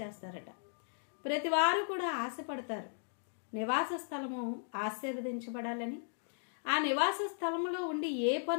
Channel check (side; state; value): right; silent; digital silence